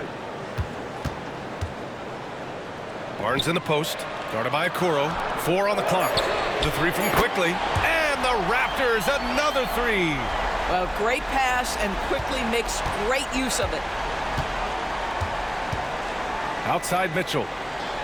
Barnes in the post, guarded by Okoro. 4 on the clock. The 3 from Quickly. And the Raptors, another 3. Well, great pass, and Quickly makes great use of it. Outside Mitchell.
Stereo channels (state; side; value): identical; both; correlation 1.00